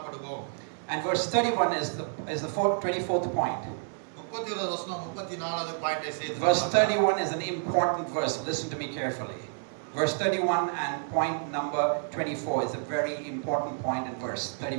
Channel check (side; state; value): left; silent; digital silence